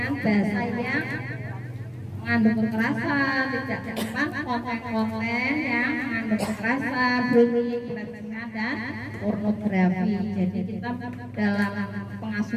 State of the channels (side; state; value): both; identical; correlation 1.00